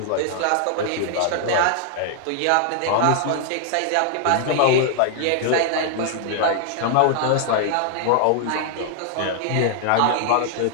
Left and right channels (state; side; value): different; both; correlation 0.00